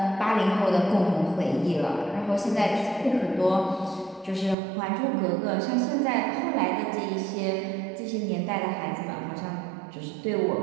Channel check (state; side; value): drops out; left; at 4.5 s